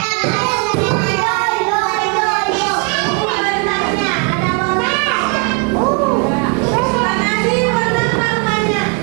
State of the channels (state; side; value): quieter; left; 34.8 dB